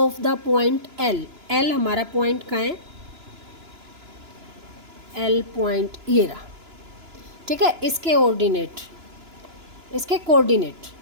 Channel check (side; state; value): left; late; 2.9 ms